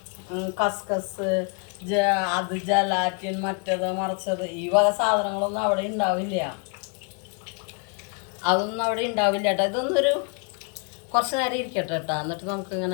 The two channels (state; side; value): quieter; right; 37.9 dB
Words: കസ്കസ്, അത് ജലാറ്റിൻ, മറ്റത് മറിച്ചത്, ഈ വക സാധനങ്ങളൊന്നും അവിടെ ഉണ്ടാവില്ല. അതൊന്നും അവിടെ ഉണ്ടാവില്ല കേട്ടോ. ഇതൊന്നൊരു കുറച്ച് നേരം ഇരിക്കട്ടെ കേട്ടോ. എന്നിട്ട്